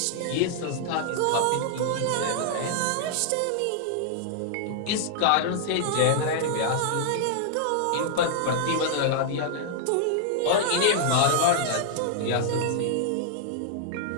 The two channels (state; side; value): different; both; correlation -0.01